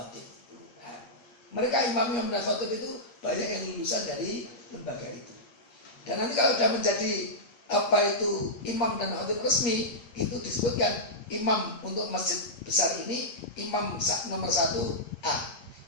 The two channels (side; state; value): right; late; 8.5 ms